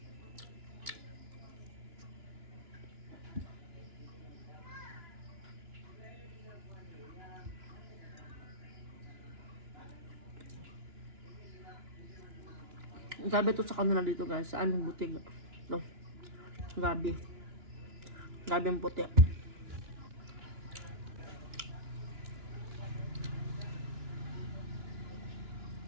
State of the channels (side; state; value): left; late; 2.9 ms